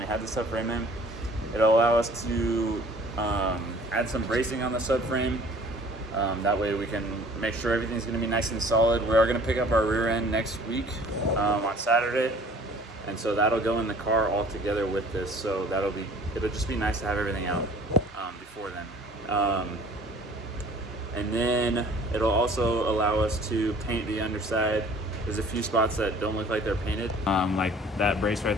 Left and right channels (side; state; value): both; normal; correlation 0.51